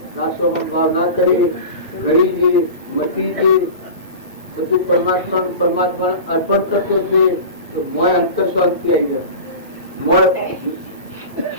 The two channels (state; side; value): inverted; both; correlation -0.32